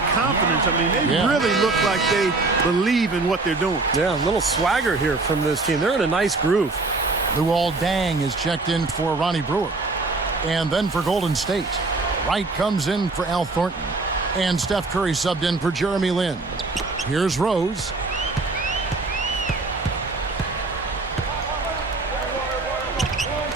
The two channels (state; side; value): quieter; left; 3.5 dB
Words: confidence? I mean, they really look like they believe in what they're doing. Yeah, a little swagger here from this team. They're in a nice groove. Luol Deng is checked in for Ronnie Brewer. And then for Golden State, Wright comes in for Al Thornton. And Steph Curry subbed in for Jeremy Lin. Here's Rose.